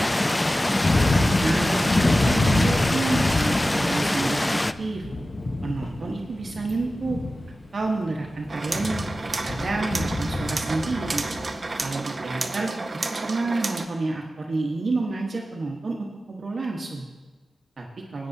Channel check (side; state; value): both; normal; correlation 0.94